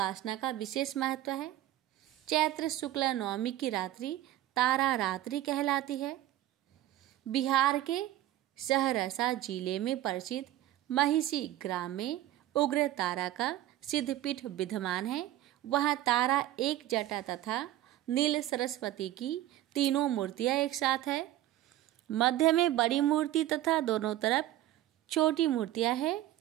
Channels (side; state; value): left; quieter; 13.9 dB